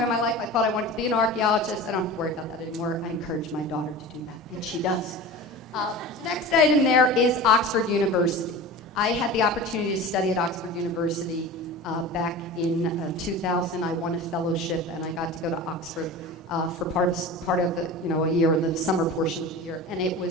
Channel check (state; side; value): normal; both; correlation 0.33